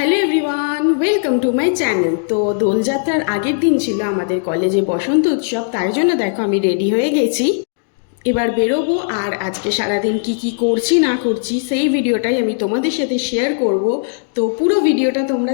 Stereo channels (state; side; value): silent; right; digital silence